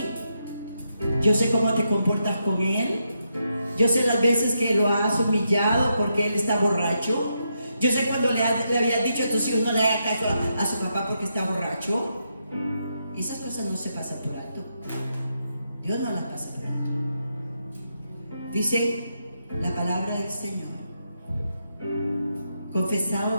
Yo sé cómo te comportas con él. Yo sé las veces que lo has humillado porque él está borracho. Yo sé cuando le habías dicho a tus hijos no le haga caso a su papá porque está borracho. Y esas cosas no se pasan por alto. Dios no las pasa por alto. Dice la palabra del Señor,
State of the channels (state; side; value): inverted; both; correlation -0.82